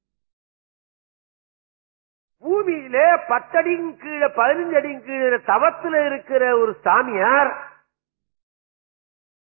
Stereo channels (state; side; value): silent; left; digital silence